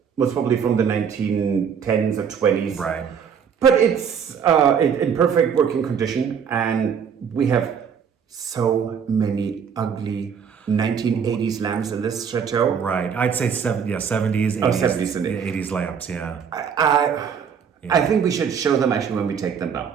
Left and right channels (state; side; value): quieter; left; 7.2 dB